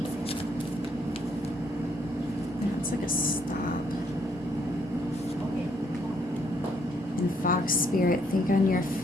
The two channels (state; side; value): normal; both; correlation 0.70